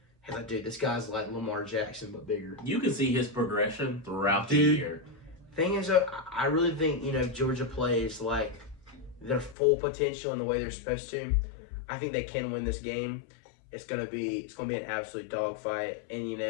hey, dude, this guy's like Lamar Jackson, but bigger. You can see his progression throughout the year. Thing is, I really think, if Georgia plays their full potential in the way they're supposed to, I think they can win this game. It's gonna be an absolute dogfight. And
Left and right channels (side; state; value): right; drops out; at 9.6 s